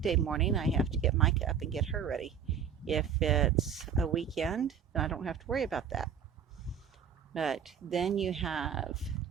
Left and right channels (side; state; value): left; quieter; 7.6 dB